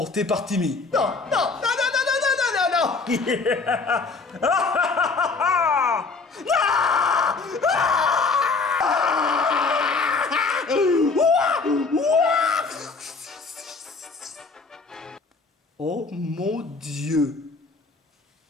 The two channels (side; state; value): right; quieter; 4.2 dB